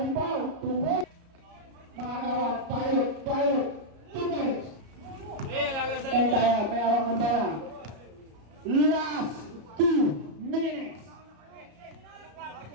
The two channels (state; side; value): late; left; 34 ms